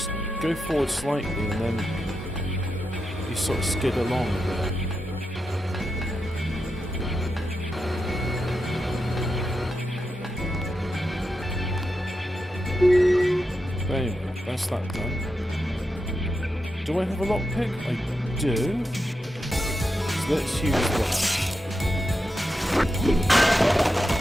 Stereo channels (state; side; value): normal; both; correlation 0.87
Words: go forward slightly and then you sort of skid along a bit. There you go, that's that done. Do I have a lockpick? I do. So let's use that.